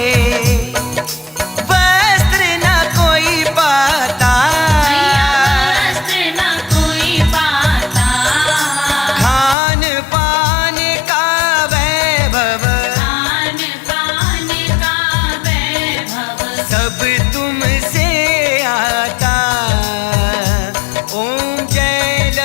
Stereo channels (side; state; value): right; drops out; at 9.6 s